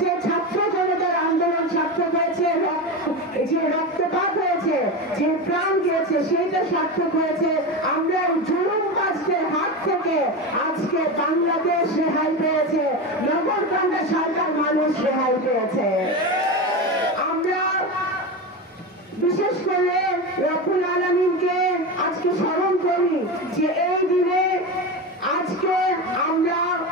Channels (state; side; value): normal; both; correlation 0.21